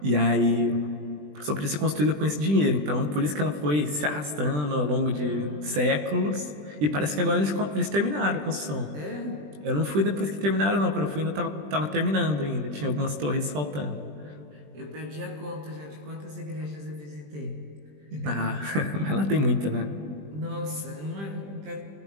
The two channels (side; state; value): left; late; 20 ms